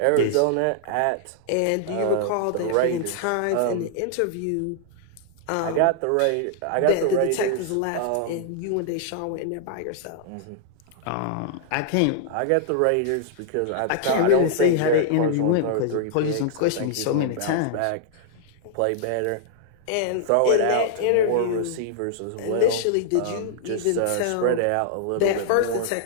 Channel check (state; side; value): different; both; correlation -0.01